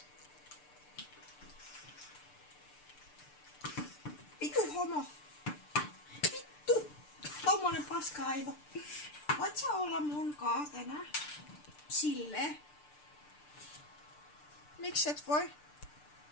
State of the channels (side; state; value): right; late; 6.8 ms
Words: Vitu homo. Vittu. Tommonen paska-aivo. Voit sä olla mun kaa tänään? Silleen. Miksi et voi?